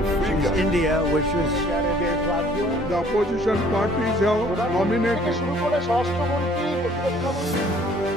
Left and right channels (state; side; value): normal; both; correlation 0.57